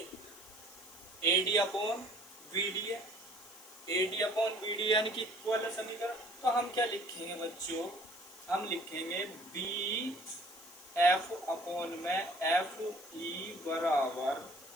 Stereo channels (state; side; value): noise; left; hiss, 19 dB below the sound